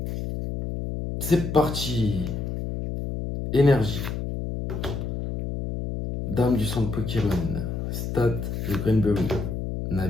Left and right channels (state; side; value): noise; left; hum, 4 dB below the sound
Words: C'est parti. Énergie. Dame du centre Pokémon. Stade de Greenberry.